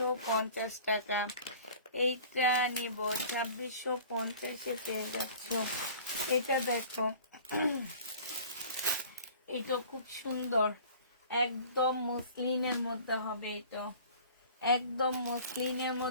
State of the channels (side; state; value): both; inverted; correlation -0.46